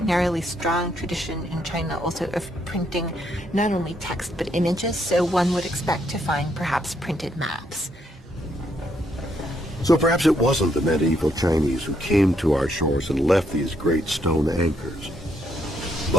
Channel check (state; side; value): normal; both; correlation 0.74